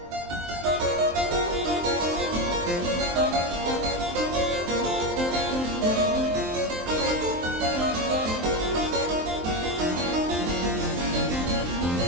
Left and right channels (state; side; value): late; left; 23 ms